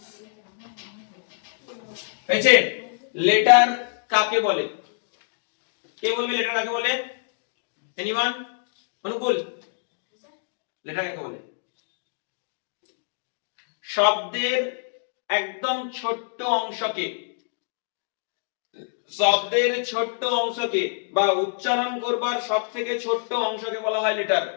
হয়েছে? লেটার কাকে বলে? কে বলবে লেটার কাকে বলে? এনিওয়ান? অনুকূল, লেটার কাকে বলে? শব্দের একদম ছোট্ট অংশকে, শব্দের ছোট্ট অংশকে বা উচ্চারণ করবার সব থেকে ছোট্ট অংশকে বলা হয় লেটার।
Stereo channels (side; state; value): right; silent; digital silence